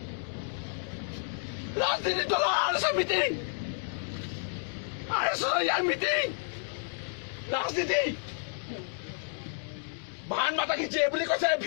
ৰাজনীতি দলৰ আৰএছৰ মিটিং আৰএছৰ ইয়াৰ মিটিং ৰাজনীতি ভাৰত মাতা কি জয় বুলি কৈছে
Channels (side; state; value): right; silent; digital silence